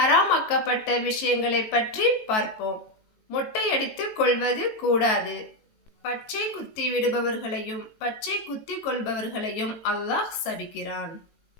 விஷயங்களை பற்றி பார்ப்போம். மொட்டையடித்துக் கொள்வது கூடாது. பச்சை குத்தி விடுபவர்களையும் பச்சை குத்தி கொள்பவர்களையும் அல்லாஹ் சபிக்கிறான்.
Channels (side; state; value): right; late; 18 ms